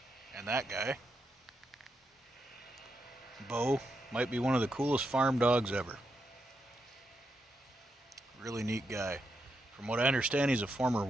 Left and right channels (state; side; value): normal; both; correlation 0.83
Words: And that guy, Beau, might be one of the coolest farm dogs ever. Really neat guy. From what I understand, he's a former